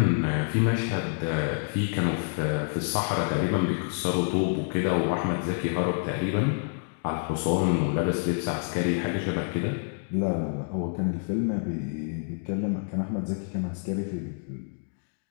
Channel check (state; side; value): silent; right; digital silence